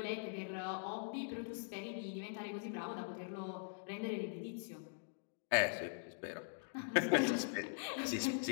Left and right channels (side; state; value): right; silent; digital silence